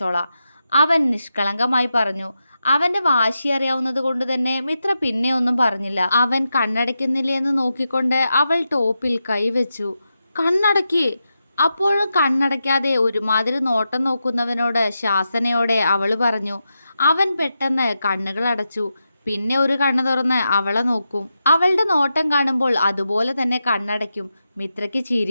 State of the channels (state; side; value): inverted; both; correlation -0.88